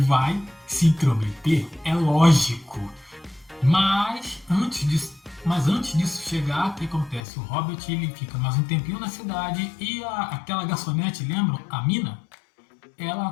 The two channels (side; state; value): right; drops out; at 7.2 s